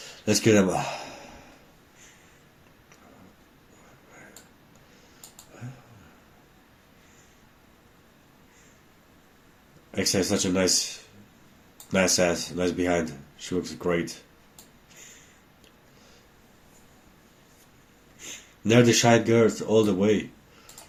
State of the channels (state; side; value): identical; both; correlation 1.00